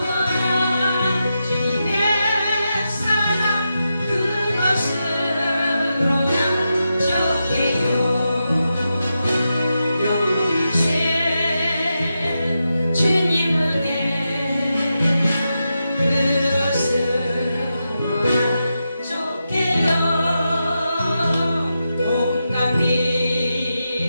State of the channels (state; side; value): inverted; both; correlation -0.88